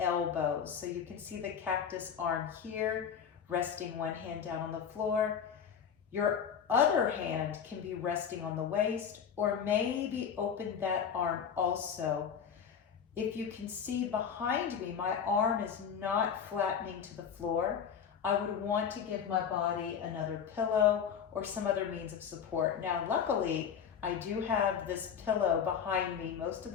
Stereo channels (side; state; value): right; quieter; 7.5 dB